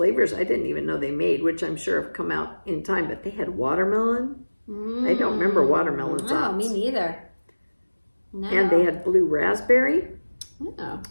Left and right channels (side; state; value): both; inverted; correlation -1.00